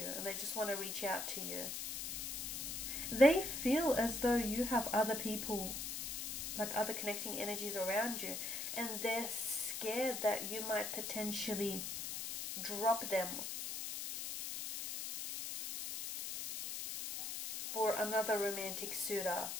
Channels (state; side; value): noise; left; hiss, 4 dB below the sound